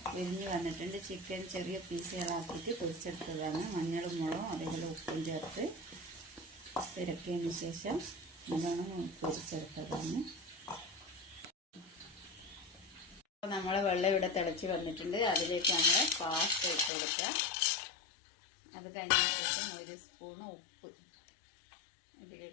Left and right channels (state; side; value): drops out; right; at 16.9 s